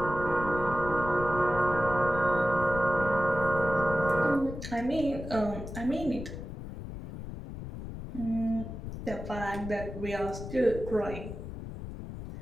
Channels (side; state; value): left; noise; rumble, 9 dB below the sound